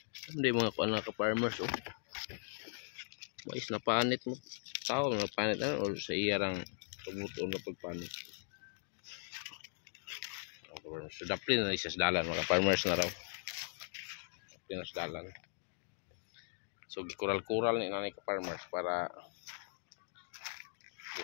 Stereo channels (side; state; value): right; silent; digital silence